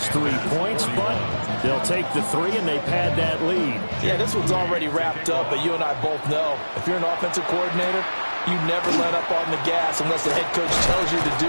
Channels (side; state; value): both; inverted; correlation -1.00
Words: 3 points, but they'll take the 3 and they pad that lead. Yeah, this one's already wrapped up, but you and I both know if you're an offensive coordinator, you never let up on the gas unless the head coach tells you to